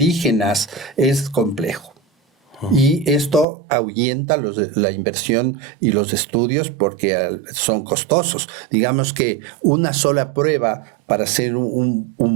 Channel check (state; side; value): drops out; left; at 3.5 s